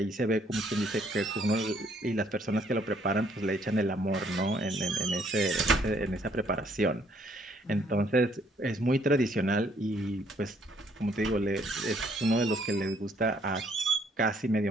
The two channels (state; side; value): normal; both; correlation 0.66